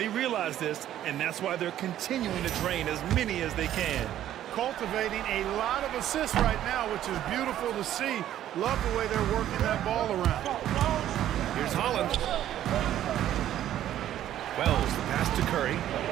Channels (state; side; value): quieter; left; 12.0 dB